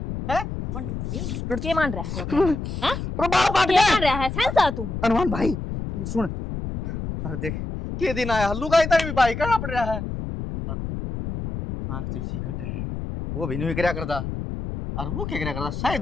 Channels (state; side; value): noise; left; rumble, 5 dB below the sound